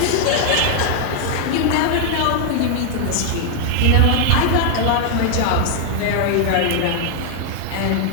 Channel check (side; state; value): both; different; correlation 0.00